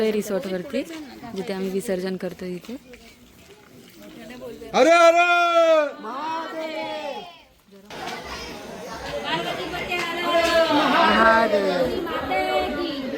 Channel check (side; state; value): both; identical; correlation 1.00